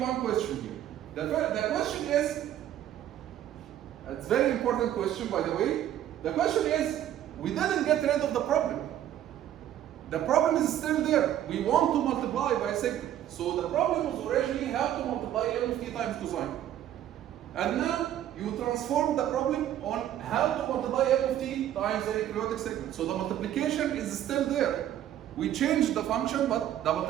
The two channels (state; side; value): quieter; left; 11.6 dB